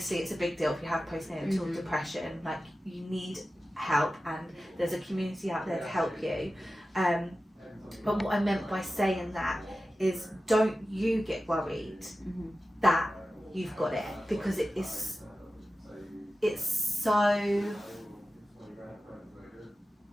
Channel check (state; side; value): normal; both; correlation 0.94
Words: it's a big deal if you have postnatal depression. Like you need help, and there's a community out there to help you. But what I meant by saying that is don't you get worried that you've got it, because it's